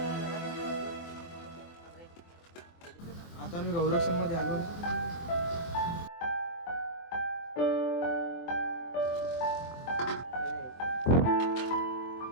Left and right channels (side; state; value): right; late; 24 ms